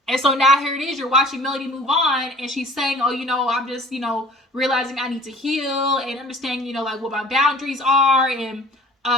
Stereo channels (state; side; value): normal; both; correlation 0.48